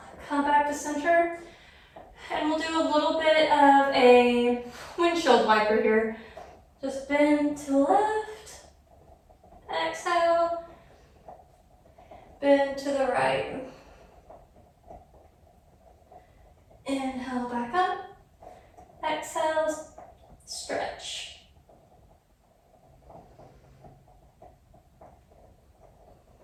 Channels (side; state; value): both; identical; correlation 1.00